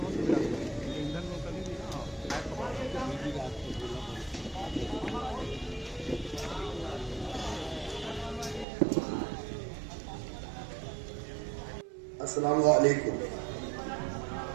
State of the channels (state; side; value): drops out; left; at 8.7 s